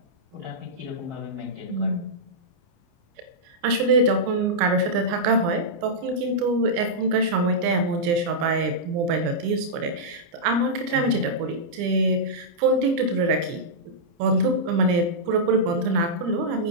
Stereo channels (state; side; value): late; left; 29 ms